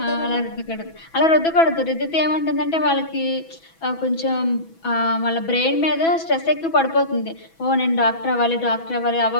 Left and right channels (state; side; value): late; right; 6.1 ms